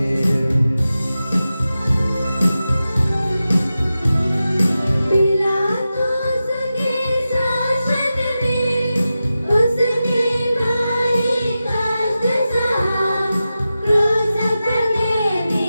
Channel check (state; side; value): inverted; both; correlation -0.92